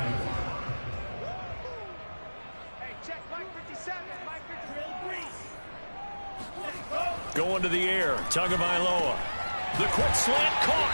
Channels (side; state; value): both; inverted; correlation -1.00